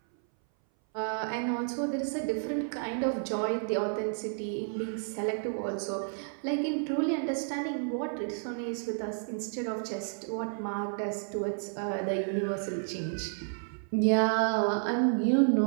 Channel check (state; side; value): silent; left; 57 dB below the other